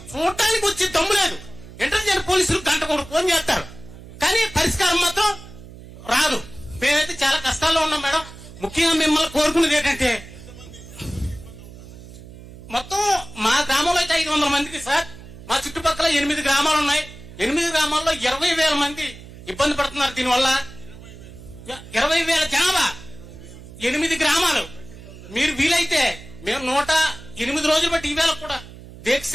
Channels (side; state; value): right; noise; hum, 17 dB below the sound